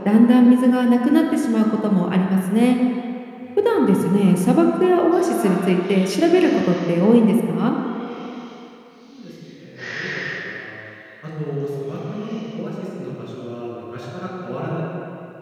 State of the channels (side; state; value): both; identical; correlation 1.00